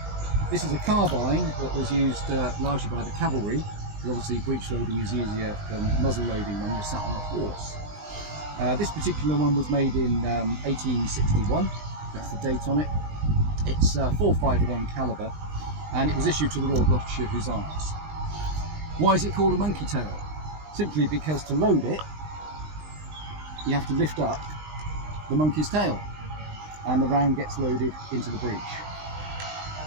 This is a carbine that was used largely by the cavalry, because obviously breech loading is easier than muzzle loading when you're sat on a horse. This particular one was made in 1861, that's the date on it. It's 451 caliber, and it was issued to the Royal Gloucestershire Hussars. Why is it called a monkey tail? Simply because to load it, you have to lift up the monkey's tail, and the round gets loaded into the breech.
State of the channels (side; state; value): left; late; 20 ms